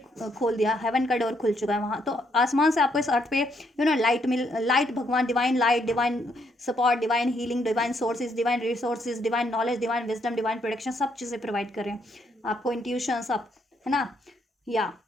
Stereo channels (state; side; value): normal; both; correlation 0.73